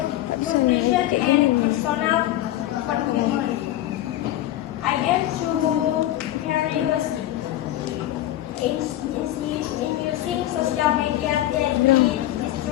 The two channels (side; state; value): right; quieter; 14.0 dB